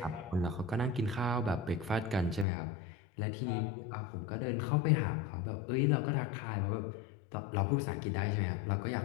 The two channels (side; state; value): right; drops out; at 2.5 s